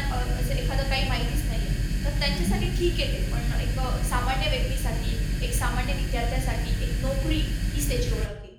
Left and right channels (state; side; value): identical; both; correlation 1.00